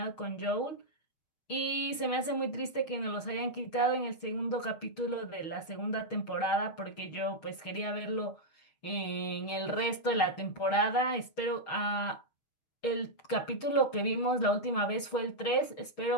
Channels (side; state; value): right; late; 6.4 ms